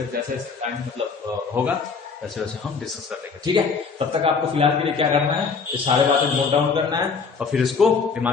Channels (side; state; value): right; quieter; 5.2 dB